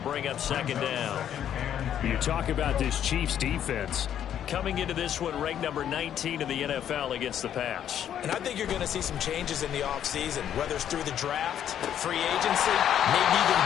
up 2nd down. You talk about this Chiefs defense. Coming into this one, ranked number 19 in the NFL against the pass. And I think you're going to see some changes in the offseason, whether it's through the draft, free agency, maybe even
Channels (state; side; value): quieter; right; 10.0 dB